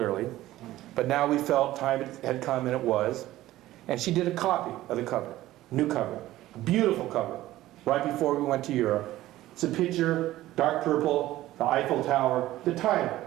But now we felt time had come, and it was. And she did a copy of the cover, new cover, a beautiful cover, right before we went to Europe. It's a picture, dark purple, the Eiffel Tower, the title,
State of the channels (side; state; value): left; quieter; 15.5 dB